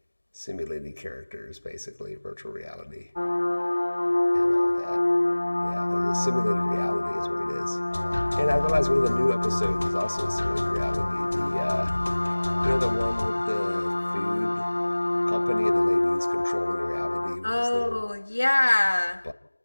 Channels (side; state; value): both; inverted; correlation -1.00